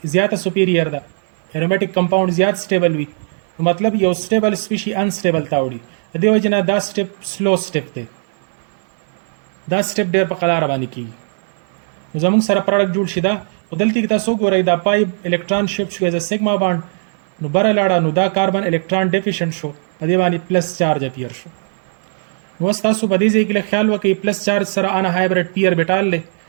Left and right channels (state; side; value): silent; left; digital silence